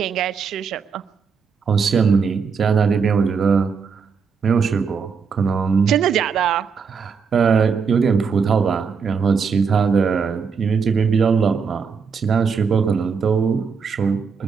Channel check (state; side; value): quieter; left; 5.8 dB